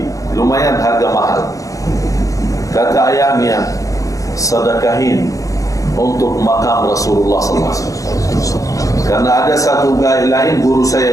lumayan harga mahal. Kata ayahnya, sedekahin untuk makam Rasulullah SAW. Karena ada satu lain guru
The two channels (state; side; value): late; right; 0.16 ms